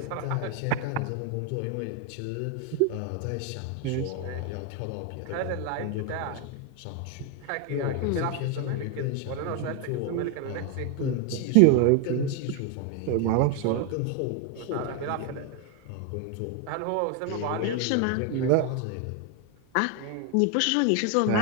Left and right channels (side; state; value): both; different; correlation 0.01